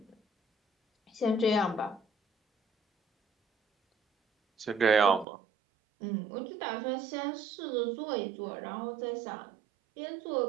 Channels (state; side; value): drops out; left; at 5.2 s